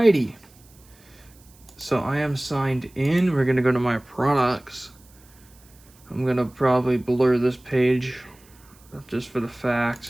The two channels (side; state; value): right; noise; hiss, 28 dB below the sound